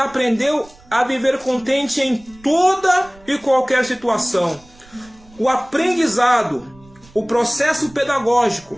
a viver contente em toda e qualquer situação. O aprendizado, o processo pedagógico,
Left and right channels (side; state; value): right; noise; rumble, 26 dB below the sound